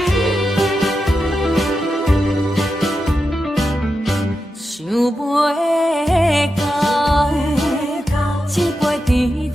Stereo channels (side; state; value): both; normal; correlation 0.89